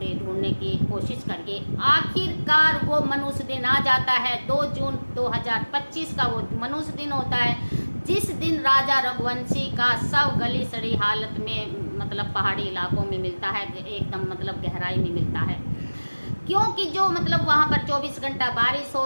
ढूंढने की कोशिश करके आखिरकार वो मनुष्य दिन आ जाता है। 2 जून 2025 का वो मनुष्य दिन होता है, जिस दिन राजा रघुवंशी का शव गली सड़ी हालत में मतलब पहाड़ी इलाकों में मिलता है, एकदम मतलब गहराई में मिलता है। क्योंकि जो मतलब वहाँ पर 24 घंटा बारिश हो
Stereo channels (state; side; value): inverted; both; correlation -1.00